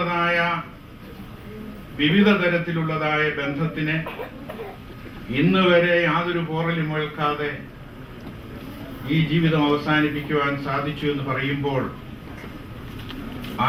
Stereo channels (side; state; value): both; identical; correlation 1.00